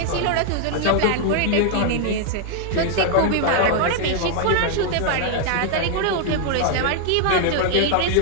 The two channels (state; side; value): different; both; correlation 0.00